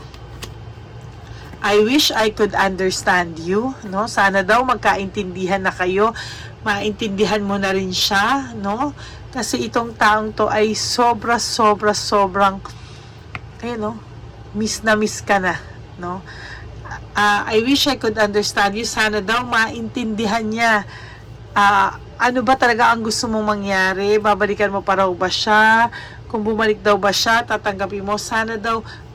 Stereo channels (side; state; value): both; identical; correlation 1.00